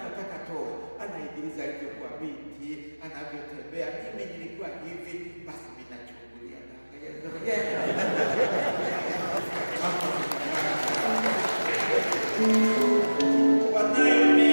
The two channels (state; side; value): inverted; both; correlation -1.00